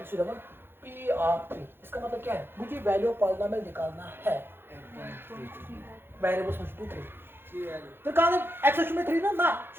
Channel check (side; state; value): left; late; 0.10 ms